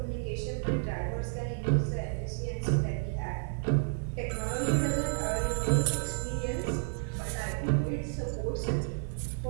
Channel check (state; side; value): silent; left; digital silence